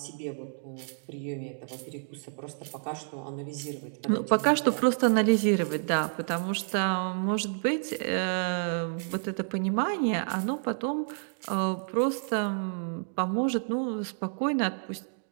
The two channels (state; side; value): silent; left; digital silence